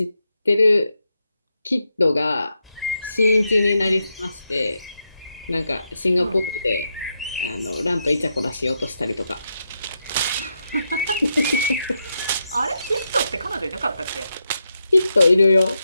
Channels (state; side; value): inverted; both; correlation -0.83